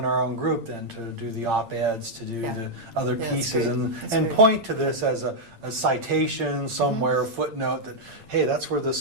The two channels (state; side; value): late; left; 8.8 ms